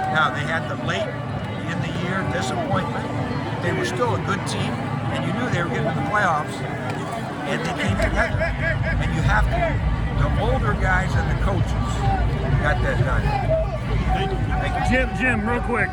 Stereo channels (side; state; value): both; identical; correlation 1.00